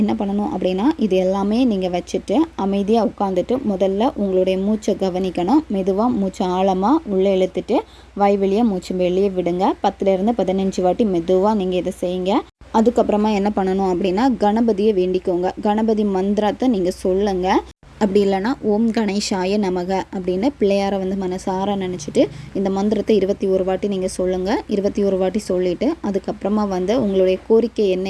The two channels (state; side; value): identical; both; correlation 1.00